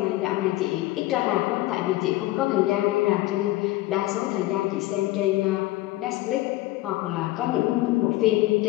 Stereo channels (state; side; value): quieter; right; 17.8 dB